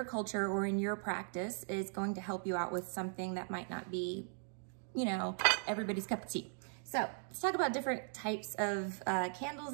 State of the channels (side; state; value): left; silent; 52 dB below the other